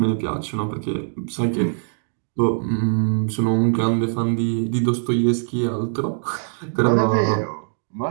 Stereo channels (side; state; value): left; silent; digital silence